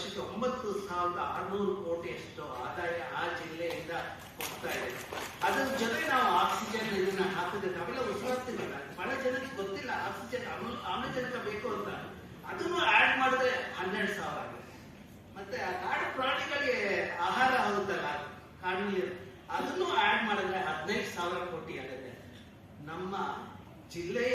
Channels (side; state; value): both; identical; correlation 1.00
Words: 9,600 ಕೋಟಿಯಷ್ಟು ಆದಾಯ ಆ ಜಿಲ್ಲೆಯಿಂದ ಹೋಗ್ತಾ ಇದೆ. ಅದ್ರ ಜೊತೆ ನಾವು ಆಕ್ಸಿಜನ್ ಇದನ್ನ ಹಾಕಿದ್ರೆ ನಾವೆಲ್ಲ ಉಸಿರಾಡ್ತೀವಲ್ಲ, ಬಹಳ ಜನಕ್ಕೆ ಗೊತ್ತಿಲ್ಲ ಆಕ್ಸಿಜನ್ ಆಮ್ಲಜನಕ ಬೇಕು ಅಂತ. ಅದನ್ನು ಆಡ್ ಮಾಡಿದ್ರೆ 12,000 ಆಗುತ್ತೆ. ಮತ್ತೆ ಆ ಕಾಡು ಪ್ರಾಣಿಗಳಿಗೆ ಆಹಾರ ಆಗುತ್ತಲ್ಲ ಕಾಡಿನಲ್ಲಿ, ಅದನ್ನು ಆಡ್ ಮಾಡಿದ್ರೆ 15,000 ಕೋಟಿ ಆಗುತ್ತೆ. ನಮ್ಮ